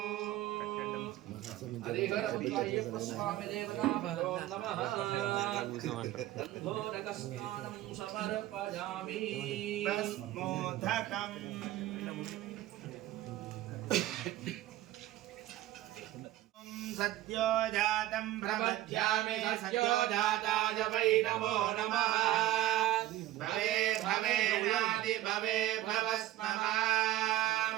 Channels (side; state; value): left; quieter; 14.8 dB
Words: हरिहरस्वामिदेवताभ्यो नमः गन्धोदकस्नानं समर्पयामि भस्मोदकम् सद्यो जातं प्रपद्यामि सद्यो जाताय वै नमो नमः भवे भवेनादि भवे भवस्ममां